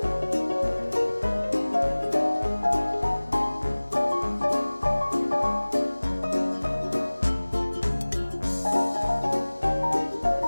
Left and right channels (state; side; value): inverted; both; correlation -1.00